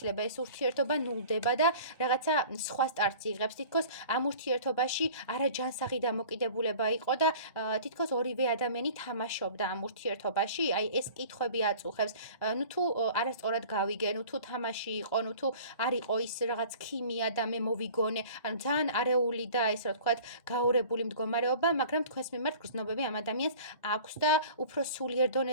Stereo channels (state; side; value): inverted; both; correlation -0.45